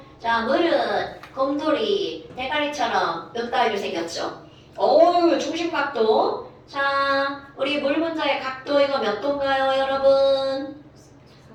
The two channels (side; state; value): both; identical; correlation 1.00